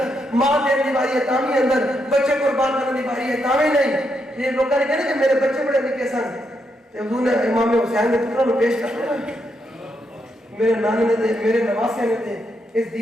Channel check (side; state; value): both; normal; correlation 0.80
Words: ماں دین دی باری ہے تاوی اندر بچے قربان کرنے دی باری ہے تاوی نہیں یہ لوگوں نے کہنا کہ میرے بچے بڑے نکے سن تے حضور نے امام حسین نے پتروں کو پیش کر دیا میرے نانے نے دے میرے نواسے نے دے اس